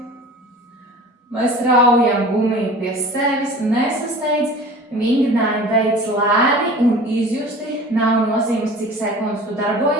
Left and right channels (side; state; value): both; normal; correlation 0.41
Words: Mēs raujam gumiju pie sevis, nesasteidz, vingrinājumu veids lēni un izjusti. Nav nozīmes, cik sekundes tu